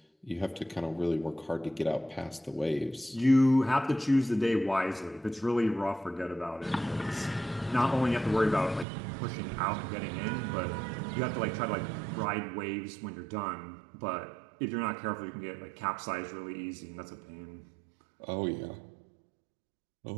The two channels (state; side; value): drops out; left; at 8.8 s